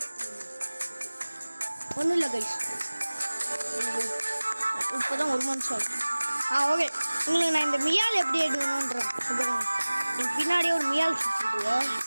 ஒன்றும் இல்லை கைஸ், இப்போதான் 1 month ஆகும். ஓகே உங்களுக்கு நான் இந்த மியால் எப்படி எடுக்கணுன்றேன். எனக்கு பின்னாடியே ஒரு மியால் சுற்றிடுவோம்.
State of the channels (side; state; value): both; inverted; correlation -1.00